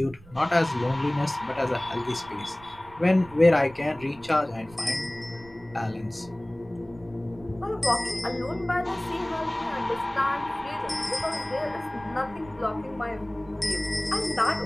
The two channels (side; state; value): right; noise; rumble, 23 dB below the sound